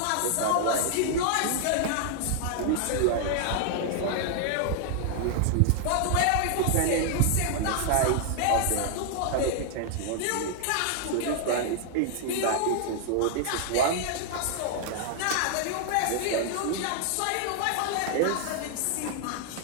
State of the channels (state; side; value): different; both; correlation 0.00